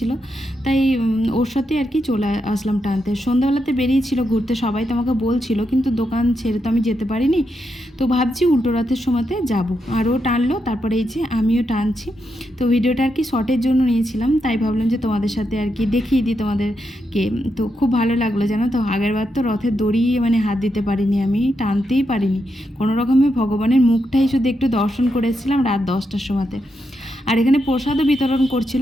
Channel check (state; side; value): normal; both; correlation 0.83